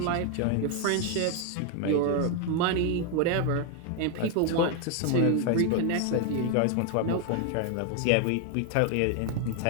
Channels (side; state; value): both; different; correlation 0.01